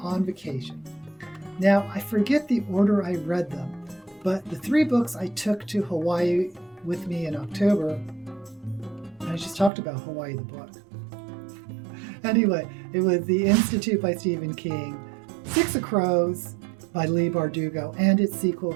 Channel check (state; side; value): drops out; left; at 9.7 s